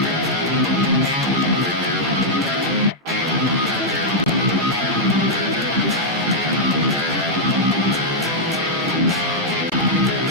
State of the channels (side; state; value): both; normal; correlation -0.05